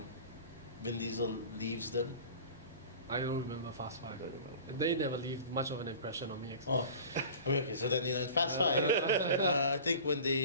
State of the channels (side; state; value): both; inverted; correlation -0.39